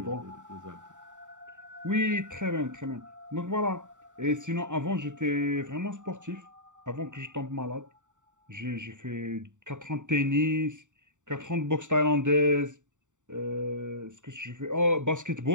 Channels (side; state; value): left; late; 0.86 ms